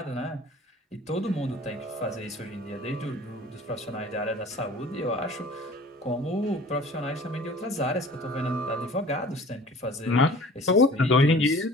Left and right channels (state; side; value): normal; both; correlation 0.46